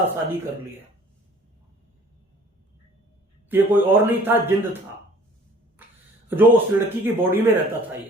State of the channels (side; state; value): both; normal; correlation 0.52